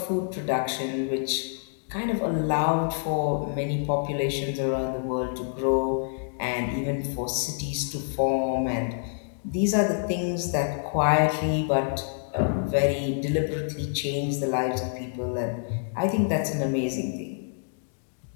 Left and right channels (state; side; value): silent; right; digital silence